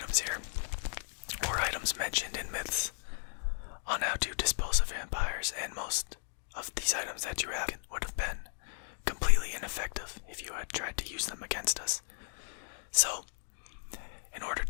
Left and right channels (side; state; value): right; silent; digital silence